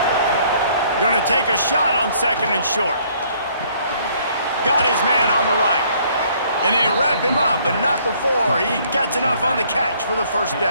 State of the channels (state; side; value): inverted; both; correlation -0.62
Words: Gonna take a shot on second and short. Got his man on the right. And they wrap him up, but not before he gets enough on the catch for the first